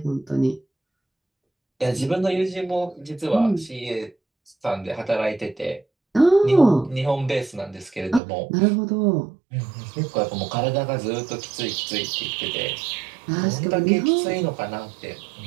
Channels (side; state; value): left; drops out; at 8.2 s